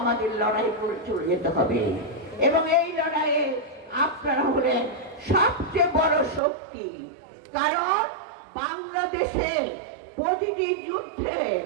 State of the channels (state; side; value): drops out; left; at 6.4 s